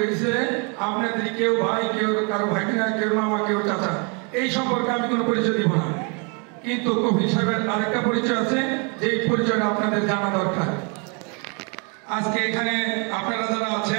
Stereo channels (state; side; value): quieter; left; 33.9 dB